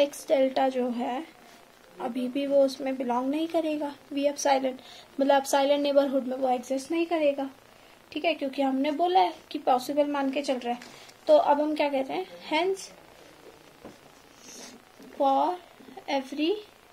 delta जो है अभी भी वो उसमें बिलोंग नहीं करेगा, v एप्सिलॉन, मतलब एप्सिलॉन नेबरहुड में वो एग्जिस्ट नहीं करेगा, ठीक है, क्योंकि हमने बोला है कि पॉसिबल मान के चल रहा है. तो अब हम क्या कहते हैं, hence for every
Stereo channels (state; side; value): identical; both; correlation 1.00